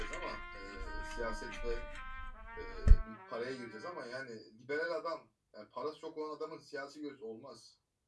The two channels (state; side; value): identical; both; correlation 1.00